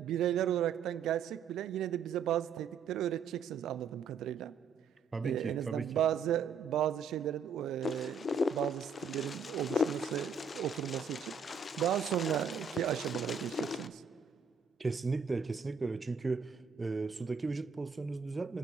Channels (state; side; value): quieter; left; 5.5 dB